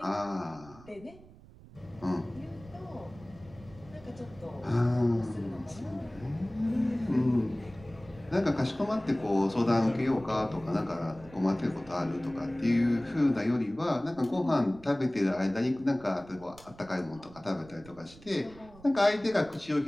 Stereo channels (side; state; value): right; noise; rumble, 21 dB below the sound